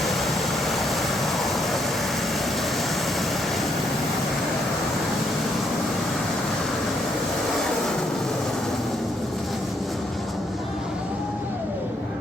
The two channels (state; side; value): normal; both; correlation 0.74